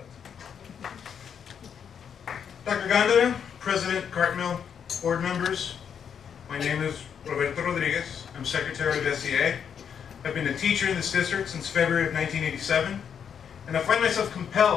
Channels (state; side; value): quieter; right; 7.7 dB